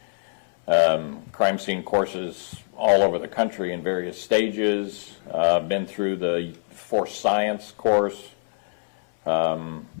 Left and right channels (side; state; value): right; silent; 62 dB below the other